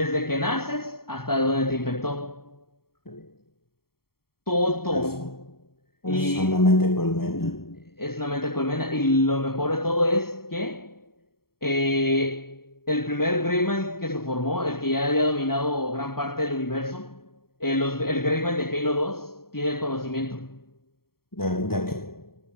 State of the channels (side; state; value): right; late; 0.94 ms